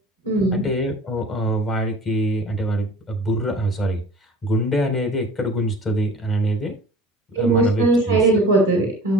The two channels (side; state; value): both; normal; correlation 0.43